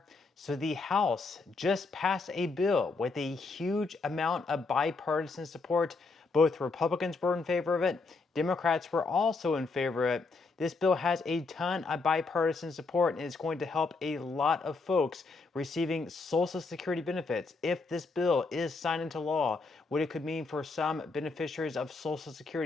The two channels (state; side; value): quieter; right; 4.0 dB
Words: So, the House just passed a bill with a huge amount of bipartisan support. Both Republicans were in favor of it, Democrats were also in favor of it. This bill has a ton of bipartisan support and is going to help a lot of folks receiving Social Security benefits. If this bill is signed into law, what it could mean for some beneficiaries of Social